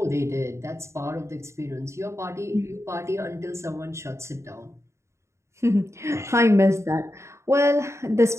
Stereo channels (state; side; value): late; left; 0.14 ms